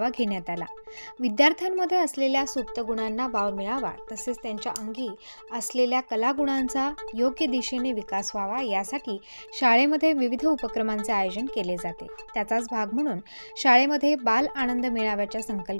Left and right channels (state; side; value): inverted; both; correlation -1.00